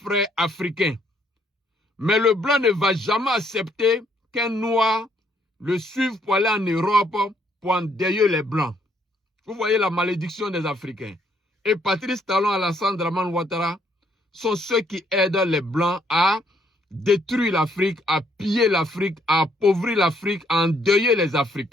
africains. Mais le Blanc ne va jamais accepter qu'un Noir le suive pour aller en Europe pour endeuiller les Blancs. Vous voyez la malédiction des Africains. Et Patrice Talon, Alassane Dramane Ouattara sont ceux qui aident les Blancs à détruire l'Afrique, à piller l'Afrique, à appauvrir l'Afrique, à endeuiller les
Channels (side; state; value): both; normal; correlation 0.69